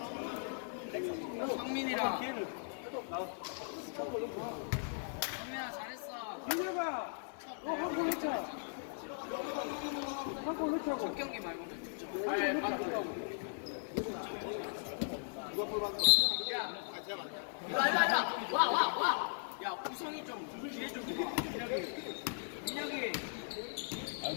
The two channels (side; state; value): right; silent; digital silence